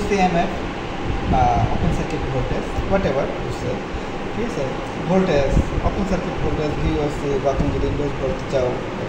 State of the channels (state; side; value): identical; both; correlation 1.00